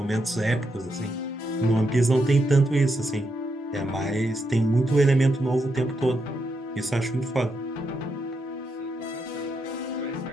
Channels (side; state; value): both; normal; correlation 0.82